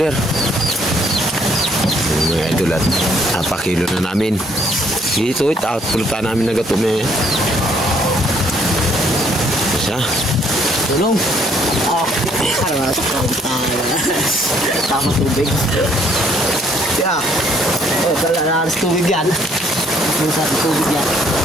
Ito mga idol at napakilo na namin. Dito at pulutan namin na gato may... Isa. Tulong! Harap. Tama tubig. Kaya. Oh, talaga tubig yan. Sa tubig yan.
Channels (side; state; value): both; normal; correlation 0.65